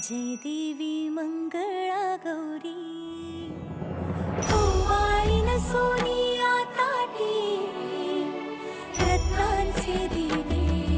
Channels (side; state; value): both; identical; correlation 1.00